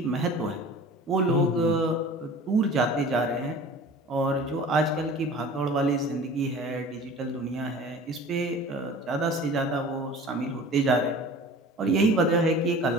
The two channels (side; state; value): both; normal; correlation 0.42